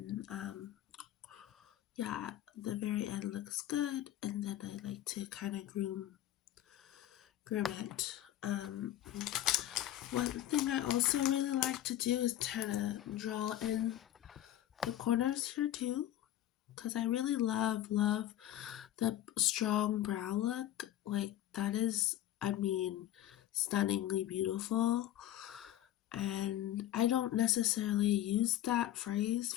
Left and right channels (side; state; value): right; quieter; 13.0 dB